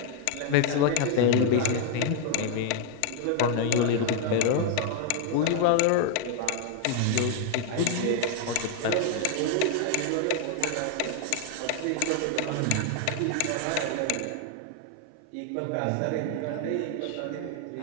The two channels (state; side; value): different; both; correlation 0.00